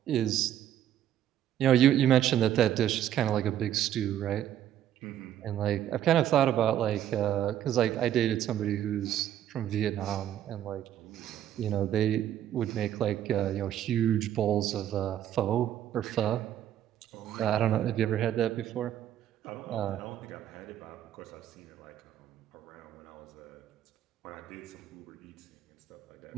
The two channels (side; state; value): left; quieter; 11.1 dB